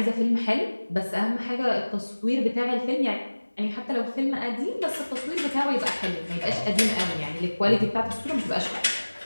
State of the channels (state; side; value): inverted; both; correlation -1.00